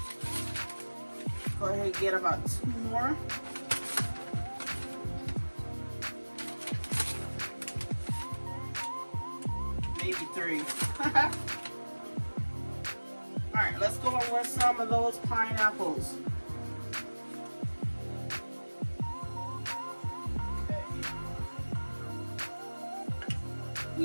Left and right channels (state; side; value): inverted; both; correlation -1.00